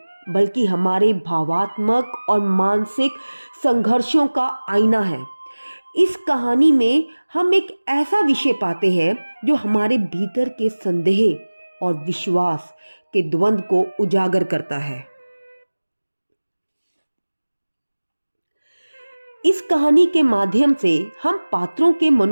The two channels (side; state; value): both; inverted; correlation -1.00